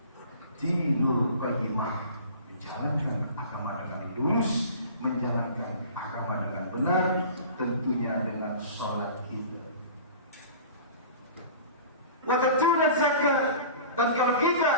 Dinul qayyimah, menjalankan agama dengan lurus, menjalankan agama dengan benar, tentunya dengan sholat kita. Wa tatuna zakat. Dan kalau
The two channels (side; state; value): both; inverted; correlation -0.41